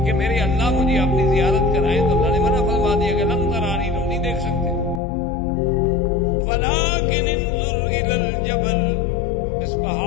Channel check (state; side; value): drops out; right; at 5.0 s